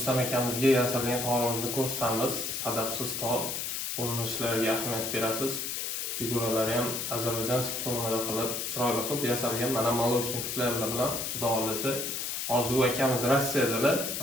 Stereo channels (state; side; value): noise; left; hiss, 3 dB below the sound